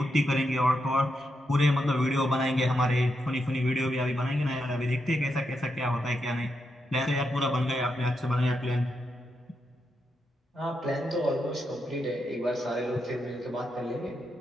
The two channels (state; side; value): normal; both; correlation 0.84